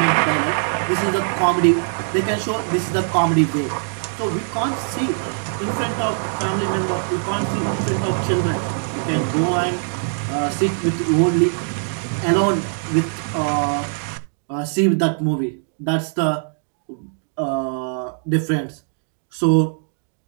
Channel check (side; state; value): left; silent; digital silence